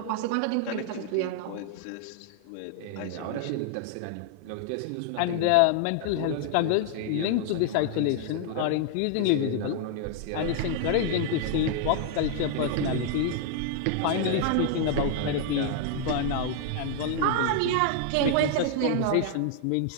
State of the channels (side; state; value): both; different; correlation 0.00